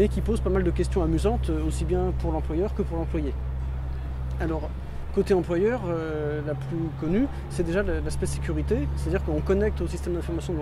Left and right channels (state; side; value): identical; both; correlation 1.00